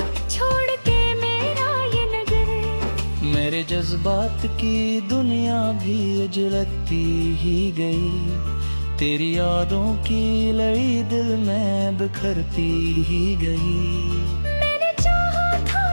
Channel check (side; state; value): both; inverted; correlation -1.00